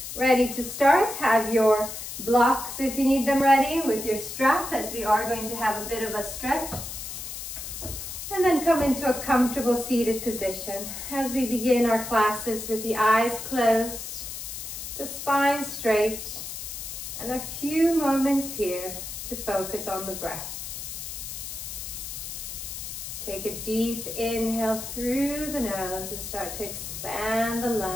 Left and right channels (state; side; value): noise; left; hiss, 8 dB below the sound